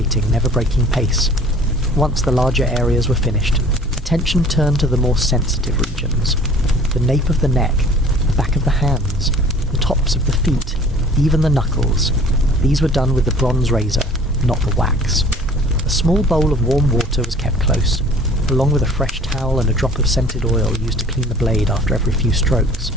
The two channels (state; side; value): normal; both; correlation 0.49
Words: never breaking pace. Once the larger areas were finished, attention turned to the more sensitive regions. The nape of the neck, the back of the hands, the tops of the feet, even the knuckles. These were done with the bronze razor, not the wax. A small bowl of warm water was kept close, along with a fresh towel and a drop of scented oil used to clean the blade after every few strokes.